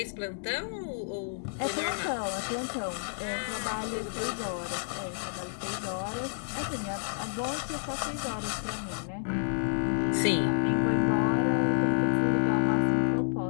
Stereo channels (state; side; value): silent; right; digital silence